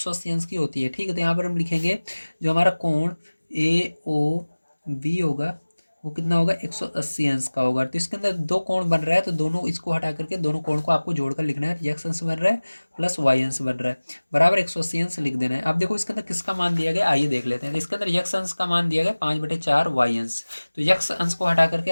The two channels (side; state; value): both; inverted; correlation -1.00